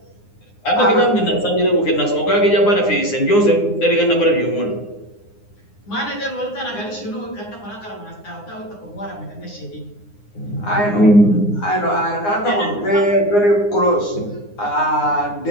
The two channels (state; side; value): late; right; 9.7 ms